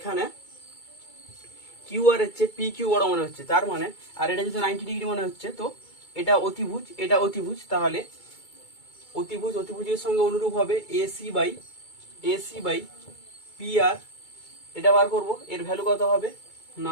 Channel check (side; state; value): right; late; 2.3 ms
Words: কিউ আর এর চেয়ে পি কিউ বড় মনে হচ্ছে। তার মানে, আর এটা যেহেতু 90 ডিগ্রি মনে হচ্ছে, তো এটা অতিভুজ, এটা অতিভুজ। তাহলে অতিভুজের সঙ্গে অনুরূপ হবে এসি বাই পি আর। এটা বার করব, এর ভ্যালু কত হবে